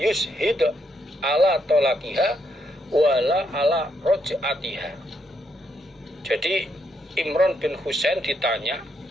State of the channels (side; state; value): both; normal; correlation 0.77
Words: ala talaqiha wala ala raj'atiha. Jadi Imran bin Husain ditanya